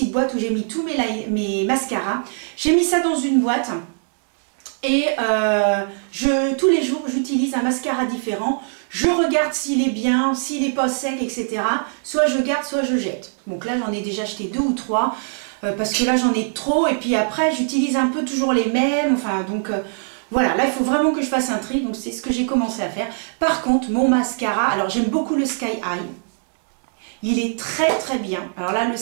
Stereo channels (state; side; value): silent; left; digital silence